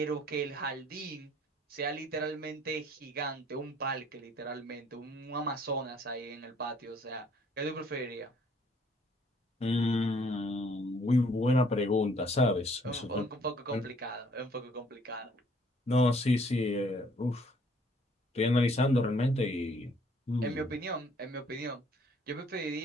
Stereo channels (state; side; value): normal; both; correlation 0.61